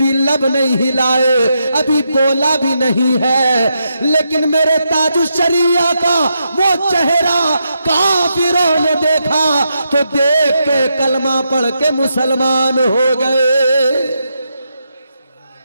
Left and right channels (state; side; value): inverted; both; correlation -0.83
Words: लब नहीं हिलाए, अभी बोला भी नहीं है, लेकिन मेरे ताजुश्शरिया का वो चेहरा काफिरों ने देखा तो देख के कलमा पढ़ के मुसलमान हो गए।